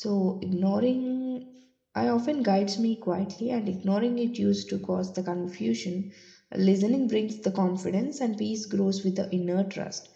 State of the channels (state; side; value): identical; both; correlation 1.00